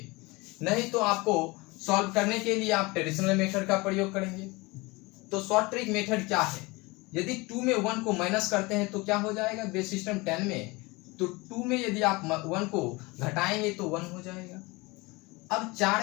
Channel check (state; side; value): quieter; right; 24.2 dB